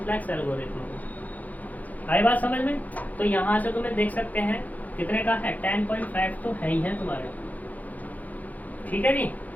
एल्गोरिथम। आई बात समझ में। तो यहाँ से तुम्हें देख सकते हैं कितने का है, 10.5 तो है ही है तुम्हारे, ठीक है जी।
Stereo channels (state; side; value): late; right; 0.079 ms